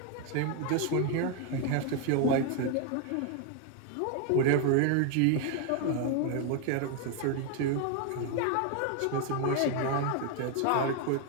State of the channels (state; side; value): different; both; correlation 0.01